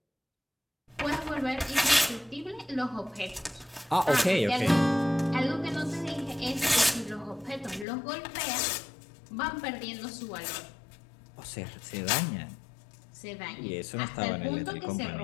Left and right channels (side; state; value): right; drops out; at 7.9 s